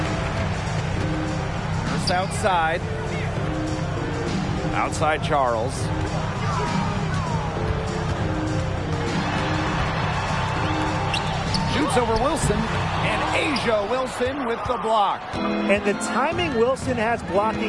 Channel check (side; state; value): both; identical; correlation 1.00